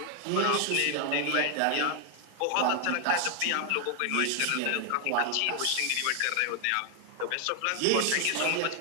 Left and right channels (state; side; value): different; both; correlation 0.00